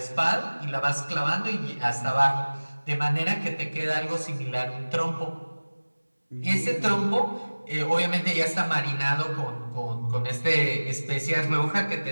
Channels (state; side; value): inverted; both; correlation -1.00